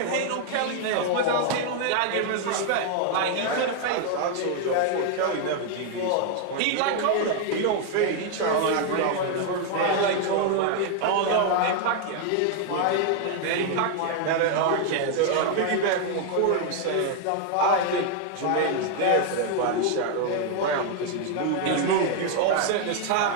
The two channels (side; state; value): both; different; correlation 0.00